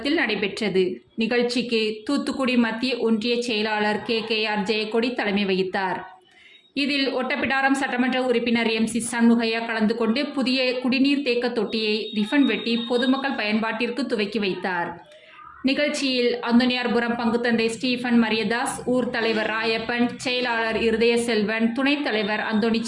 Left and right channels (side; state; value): both; identical; correlation 1.00